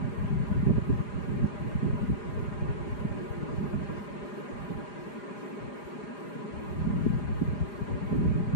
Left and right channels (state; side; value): late; right; 4.9 ms